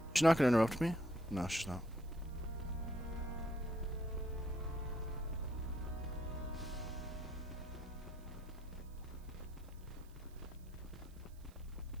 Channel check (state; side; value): noise; right; hiss, 26 dB below the sound